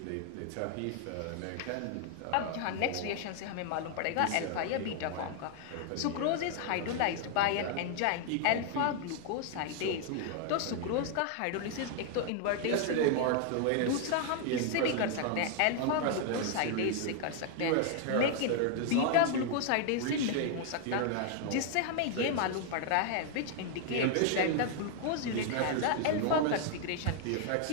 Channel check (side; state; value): both; different; correlation 0.00